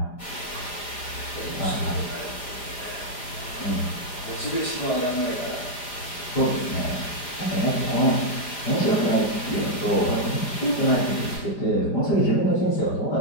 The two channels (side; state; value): right; late; 4.9 ms